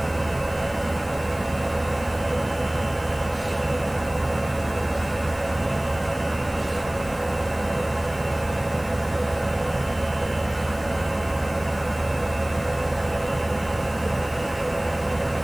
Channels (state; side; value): noise; left; hiss, 19 dB below the sound